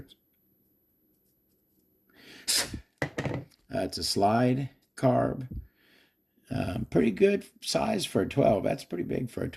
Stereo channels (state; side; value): identical; both; correlation 1.00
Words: It's a slide carb. Pretty good size for a 12. That's pretty big for a